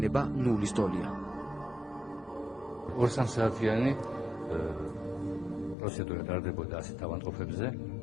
ნულის დოლია. 2-3 საათიანი პროცედურა ტარდებოდა ასეთ ავადმყოფებზე,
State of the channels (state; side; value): drops out; right; at 5.8 s